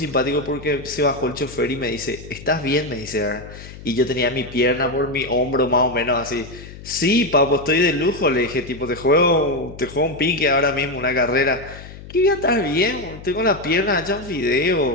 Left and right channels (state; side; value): noise; left; hum, 15 dB below the sound